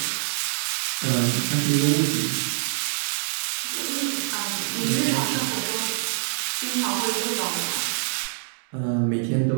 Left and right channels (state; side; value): silent; left; digital silence